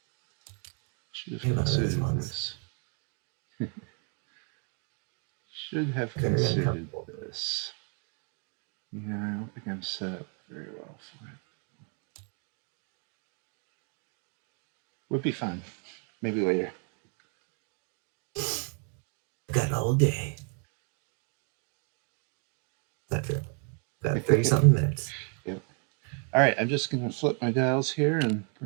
Should have Maybe one of those considered ones. this. Should have Good enough. considered this. Yeah, I don't think I'm set up very well for it. Would be fun. Maybe later. Got all day. That's true. Got 30 something minutes. Yep. All right, I'm just going to flip my dials here and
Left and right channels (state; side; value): quieter; left; 38.8 dB